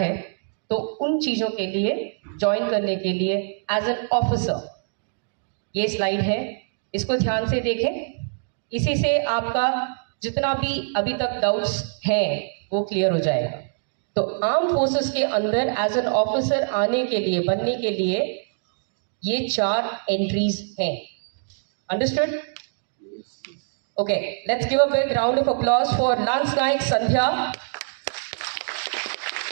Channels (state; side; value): silent; left; digital silence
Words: तो उन चीज़ों के लिए ज्वाइन करने के लिए एज एन ऑफिसर, ये स्लाइड है, इसको ध्यान से देखें। इसी से आपका जितना भी अभी तक डाउट्स हैं वो क्लियर हो जाएगा। तो आर्म फोर्सेस के अंदर एज एन ऑफिसर आने के लिए, बनने के लिए ये 4 एंट्रीज हैं। Understood? Okay, let's give a big round of applause for lance Naik Sandhya.